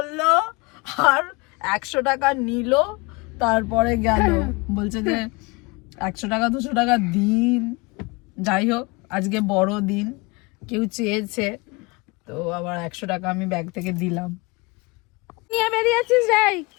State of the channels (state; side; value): quieter; right; 26.1 dB